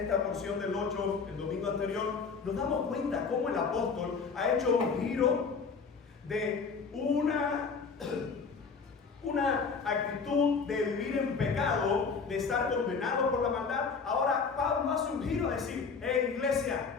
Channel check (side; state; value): right; quieter; 5.2 dB